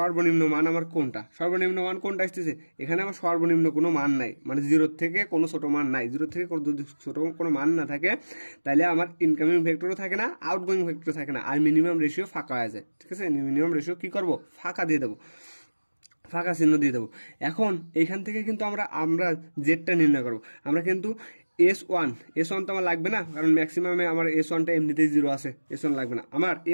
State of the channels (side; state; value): both; inverted; correlation -1.00